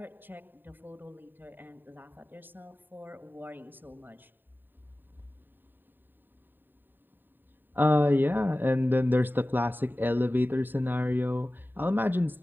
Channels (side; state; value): left; late; 0.093 ms